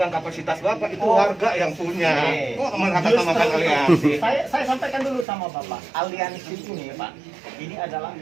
kapasitas bapak, itu Oh. warga yang punya. Kok mengatasnamakan Justru aliansi? saya sampaikan dulu sama Bapak. Aliansi ini Pak, ini adalah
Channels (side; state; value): left; drops out; at 5.2 s